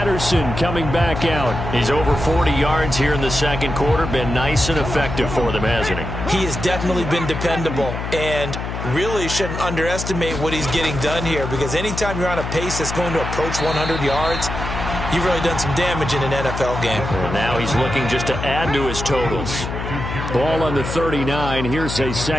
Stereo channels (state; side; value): noise; left; hum, 5 dB below the sound